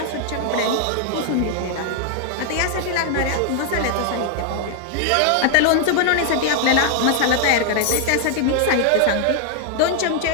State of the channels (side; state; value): both; different; correlation 0.00